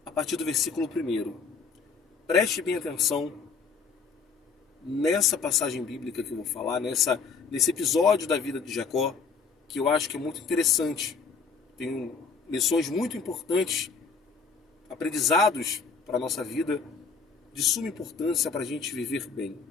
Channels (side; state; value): right; quieter; 5.2 dB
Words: a partir do versículo 1. Preste bem atenção nessa passagem bíblica que eu vou falar, nesse episódio da vida de Jacó, que eu acho que é muito interessante. Tem lições muito importantes, aprendizados para a nossa vida, de suma importância para a gente viver bem.